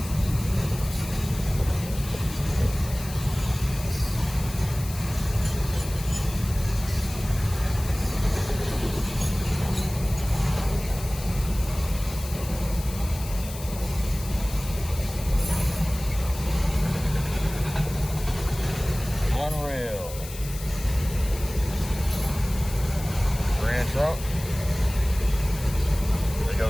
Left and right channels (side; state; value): left; noise; hiss, 13 dB below the sound